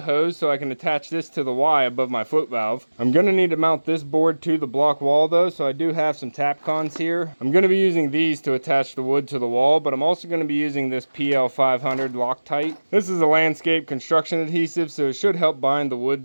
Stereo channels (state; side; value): inverted; both; correlation -1.00